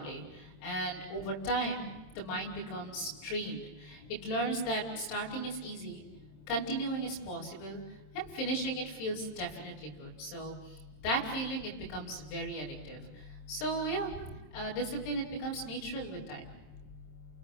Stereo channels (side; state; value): right; late; 27 ms